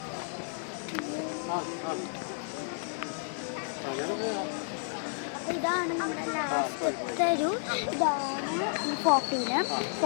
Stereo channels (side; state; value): right; silent; digital silence